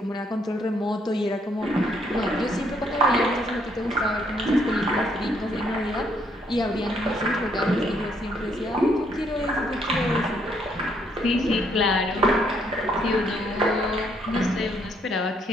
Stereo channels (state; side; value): normal; both; correlation 0.70